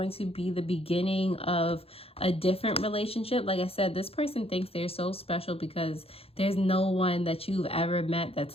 to be the beginning of a different relationship. Like I said, this person thinks they're so special because there's no one that you've ever met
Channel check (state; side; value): late; right; 0.28 ms